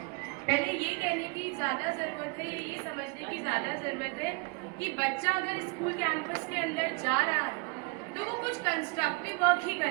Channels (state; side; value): quieter; left; 30.4 dB